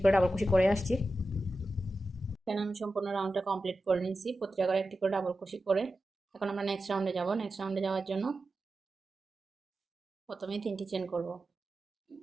করে ডাবল কুশি করে আসছি। এখানে আমি সম্পূর্ণ রাউন্ডটা কমপ্লিট করে নিয়েছি। প্রতিটা করে একটি করে ডাবল কুশি করে এখন আমরা নেক্সট রাউন্ডে যাব। নেক্সট রাউন্ডে যাওয়ার জন্য প্রথমে 3টি চেন করব।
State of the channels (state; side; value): normal; both; correlation 0.92